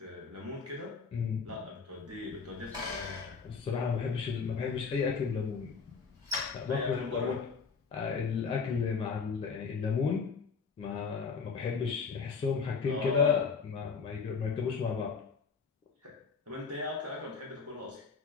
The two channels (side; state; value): right; quieter; 5.3 dB